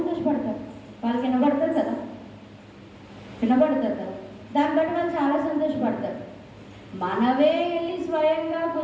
వాళ్ళకి వినబడుతుంది కదా, వినబడుతుంది కదా, దాన్ని బట్టి వాళ్ళు చాలా సంతోషపడతారు. మనవే వెళ్ళి స్వయంగా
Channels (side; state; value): both; identical; correlation 1.00